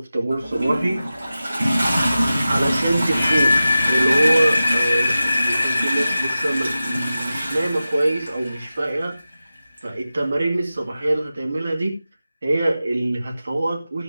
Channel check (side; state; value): both; inverted; correlation -0.94